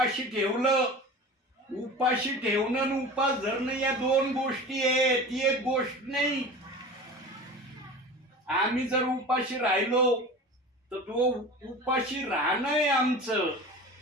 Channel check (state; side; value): normal; both; correlation 0.35